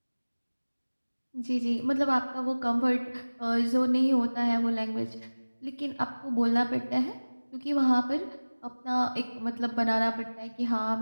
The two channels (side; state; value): both; inverted; correlation -1.00